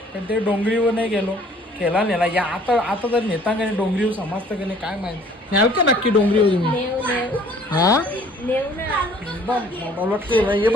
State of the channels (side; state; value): both; normal; correlation 0.56